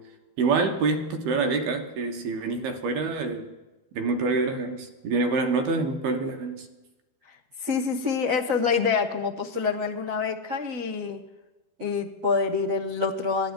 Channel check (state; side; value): late; left; 12 ms